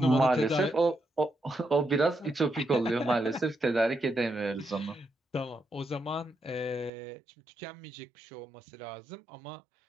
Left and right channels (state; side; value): drops out; left; at 6.9 s